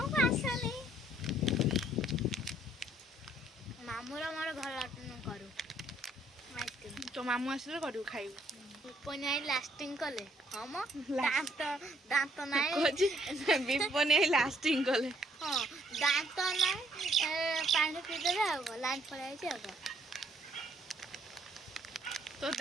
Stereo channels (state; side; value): normal; both; correlation 0.67